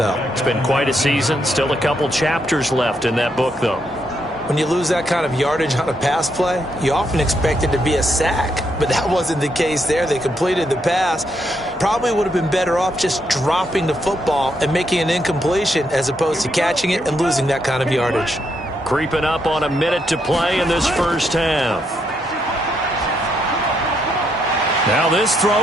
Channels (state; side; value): normal; both; correlation 0.77